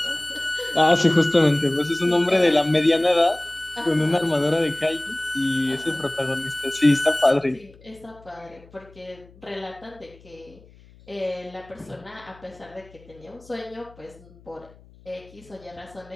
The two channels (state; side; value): noise; left; hum, 25 dB below the sound